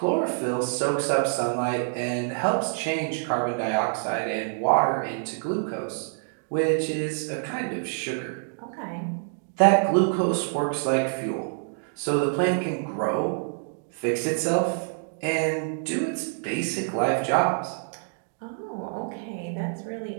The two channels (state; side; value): silent; left; digital silence